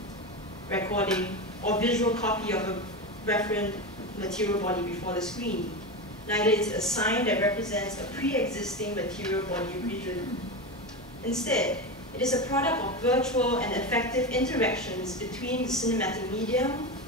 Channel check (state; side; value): normal; both; correlation 0.20